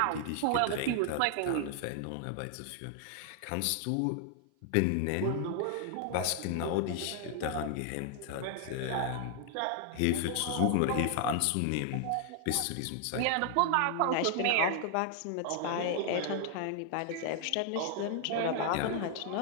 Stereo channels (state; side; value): different; both; correlation 0.00